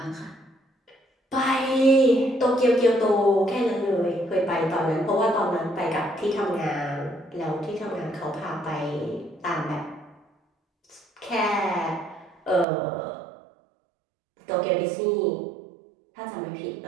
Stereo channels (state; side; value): drops out; left; at 12.7 s